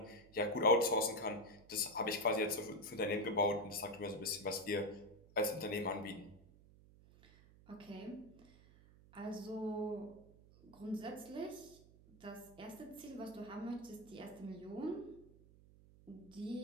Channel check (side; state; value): right; noise; hum, 23 dB below the sound